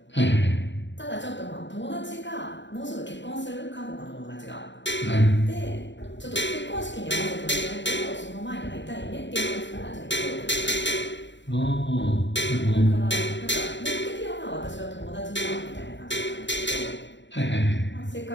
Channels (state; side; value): late; right; 0.53 ms